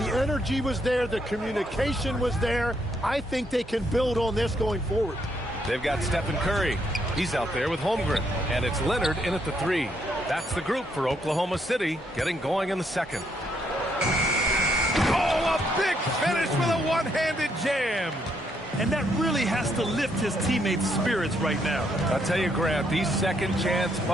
energy was there. The communication was there. I think they can build on this going forward. They've got Stephen Curry. He's out there with Holmgren. And it's Leonard in at the 3. That's the group for Oklahoma City getting going in the second. Oh, a big finish with a one-handed jam. And that really has to lift his teammates' spirits right now. I'll tell you, Grant, these second-chance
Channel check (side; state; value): both; normal; correlation 0.74